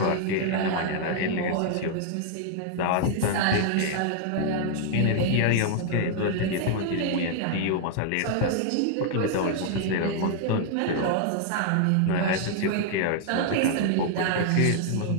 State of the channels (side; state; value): both; different; correlation 0.00